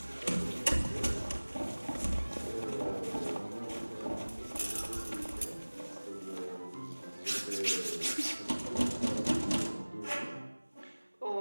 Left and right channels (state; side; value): inverted; both; correlation -1.00